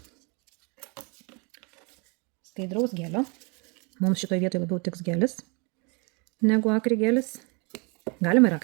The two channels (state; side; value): quieter; left; 32.2 dB